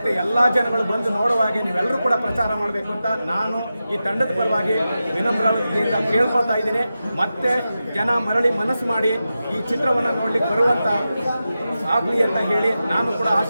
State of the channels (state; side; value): inverted; both; correlation -0.92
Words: ಎಲ್ಲ ಜನಗಳು ಬಂದು ನೋಡುವಾಗೆ ನೀವೆಲ್ಲರೂ ಕೂಡ ಪ್ರಚಾರ ಮಾಡಬೇಕು ಅಂತ ನಾನು ಈ ತಂಡದ ಪರವಾಗಿ ವಿನಮ್ರತೆಯಿಂದ ಕೇಳ್ಕೊಳ್ತಾ ಇದ್ದೀನಿ. ಮತ್ತೆ ಜನ ಮರಳಿ ಮನಸ್ಸು ಮಾಡಿ ಈ ಚಿತ್ರವನ್ನು ನೋಡ್ಲಿಕ್ಕೆ ಬರುವಂಥ ಆಗಲಿ ಅಂತ ಹೇಳಿ ನಾನು ಕೂಡ